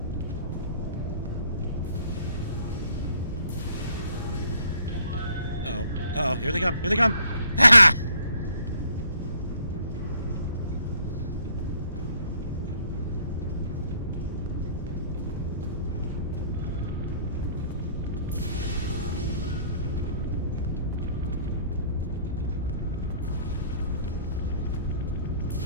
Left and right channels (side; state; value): both; inverted; correlation -0.60